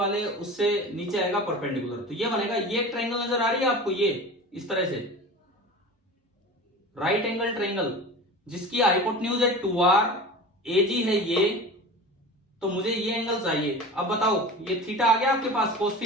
उससे नीचे आएगा परपेंडिकुलर, तो ये बनेगा, ये एक ट्रायंगल नजर आ रही है आपको, ये इस तरह से राइट एंगल ट्रायंगल जिसकी हाइपोटेन्यूज है 2r, AG है ये, तो मुझे ये एंगल चाहिए। अब बताओ ये थीटा आ गया आपके पास, कोस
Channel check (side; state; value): both; normal; correlation 0.34